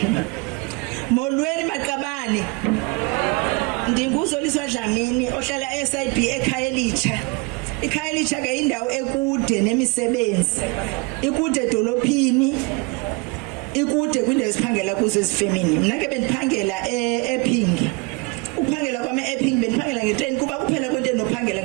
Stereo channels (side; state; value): left; quieter; 28.2 dB